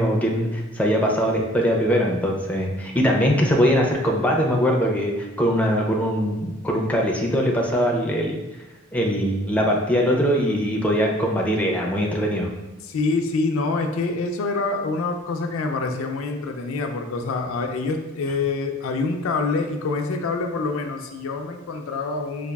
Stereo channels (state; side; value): normal; both; correlation 0.53